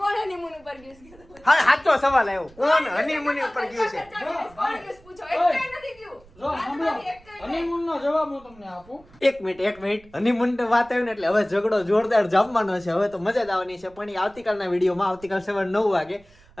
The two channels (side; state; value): right; noise; rumble, 26 dB below the sound